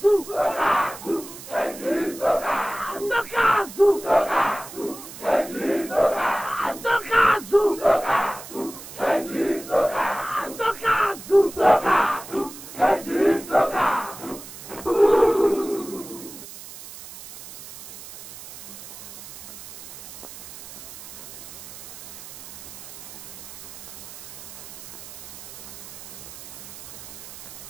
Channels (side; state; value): right; noise; hiss, 14 dB below the sound